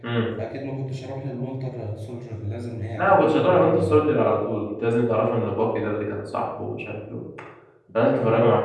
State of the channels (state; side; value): identical; both; correlation 1.00